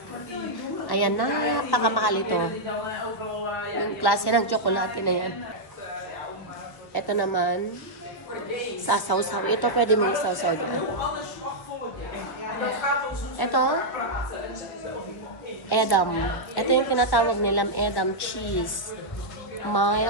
Ayan, napakamahal ito. Yung klase ng chocolate na yan. Ito naman, sasaw-saw. Ito pwede mong sasaw dyan. Ito, Edam. Ito yung tinatawag nilang Edam cheese.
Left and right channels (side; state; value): right; late; 1.1 ms